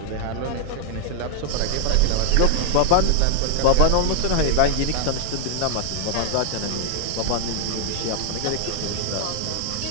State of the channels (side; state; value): both; different; correlation -0.01